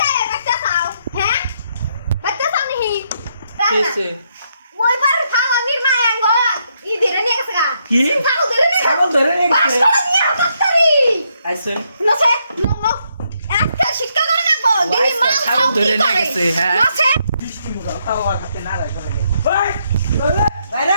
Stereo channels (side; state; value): both; inverted; correlation -0.76